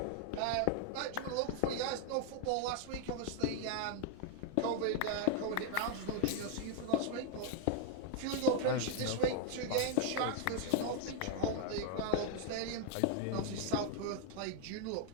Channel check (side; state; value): both; different; correlation -0.01